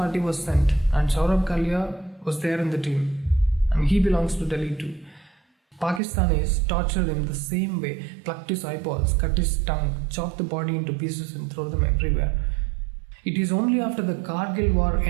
was sent and Saurabh Kalia was there in the team, and he belongs to Delhi too. Pakistanis tortured him the same way, plucked his eyeballs, cut his tongue, chopped the body into pieces and throw them everywhere. It is only after the Kargil war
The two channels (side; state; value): left; drops out; at 6.0 s